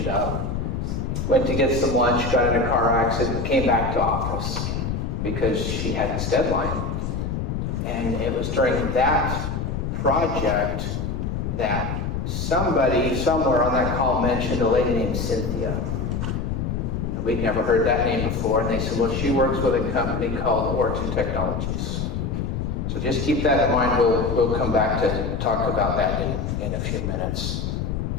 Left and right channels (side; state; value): left; noise; rumble, 2 dB below the sound